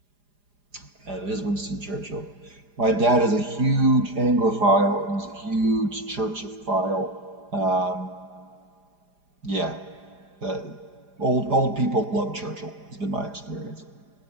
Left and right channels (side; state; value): left; late; 4.9 ms